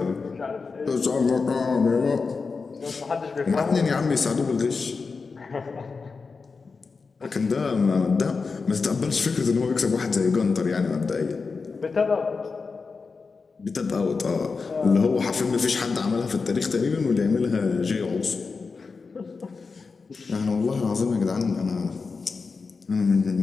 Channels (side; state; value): right; quieter; 4.6 dB